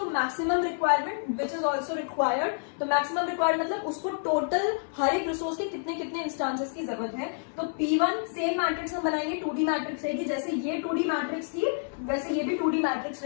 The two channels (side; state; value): right; silent; 59 dB below the other